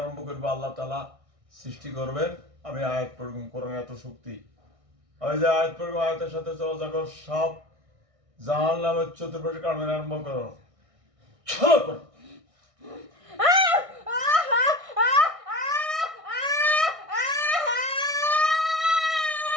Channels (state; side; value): late; left; 1.6 ms